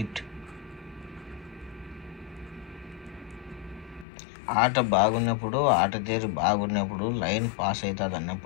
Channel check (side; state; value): right; drops out; at 4.0 s